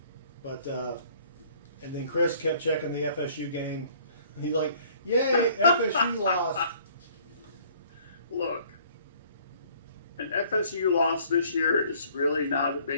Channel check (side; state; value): both; inverted; correlation -0.58